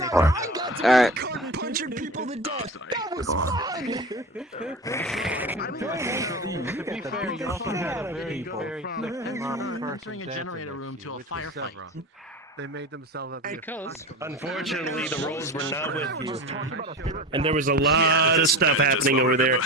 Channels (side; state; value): both; normal; correlation 0.30